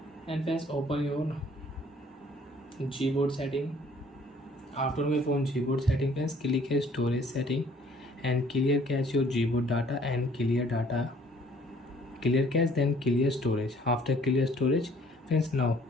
And friends, open your Gboard setting. After your phone Gboard setting friends, click here storage setting and clear cache your Gboard data and clear cache, then clear storage. After clear storage friends, now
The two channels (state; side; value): normal; both; correlation 0.58